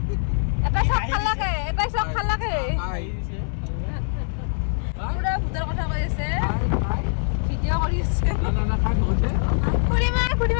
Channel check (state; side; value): silent; right; digital silence